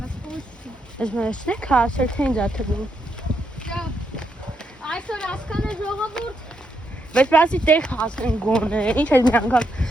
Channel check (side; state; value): both; normal; correlation 0.79